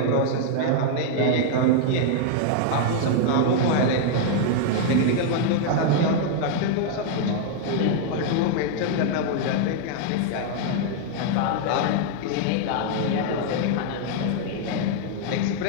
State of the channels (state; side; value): different; both; correlation 0.00